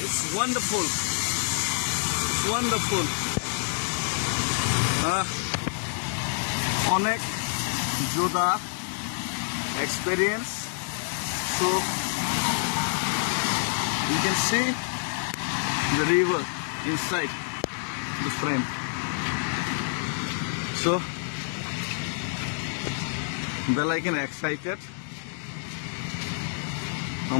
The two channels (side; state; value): right; silent; digital silence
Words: it's wonderful. Onek Joda experience. So you can see the river inside the frame. So well, I can excited.